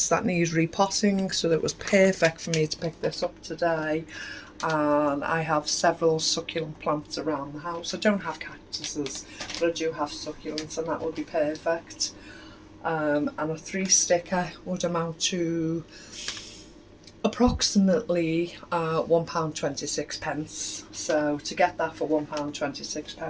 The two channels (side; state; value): both; identical; correlation 1.00